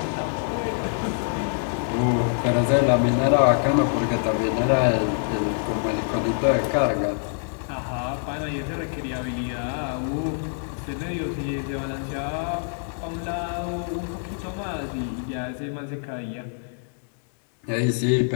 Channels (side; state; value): right; silent; digital silence